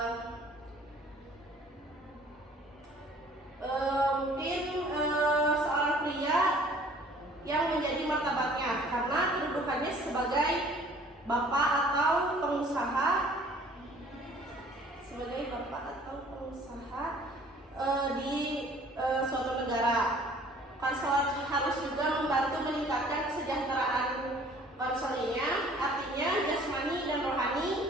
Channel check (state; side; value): normal; both; correlation 0.54